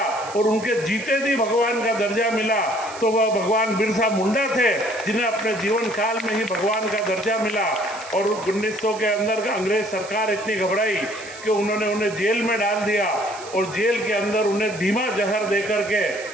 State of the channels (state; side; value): noise; right; hiss, 16 dB below the sound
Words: और उनके जीते जी भगवान का दर्जा मिला तो वह भगवान बिरसा मुंडा थे, जिन्हें अपने जीवन काल में ही भगवान का दर्जा मिला। और 1900 के अंदर अंग्रेज सरकार इतनी घबराई कि उन्होंने उन्हें जेल में डाल दिया और जेल के अंदर उन्हें धीमा जहर दे करके